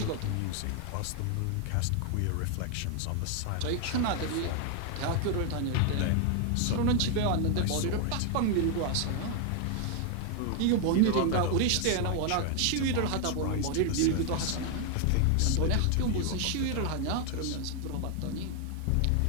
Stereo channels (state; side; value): different; both; correlation 0.01